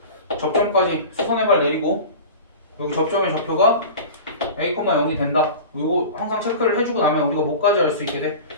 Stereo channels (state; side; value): inverted; both; correlation -0.34